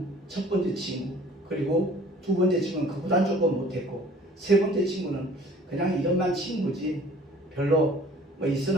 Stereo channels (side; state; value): both; normal; correlation 0.51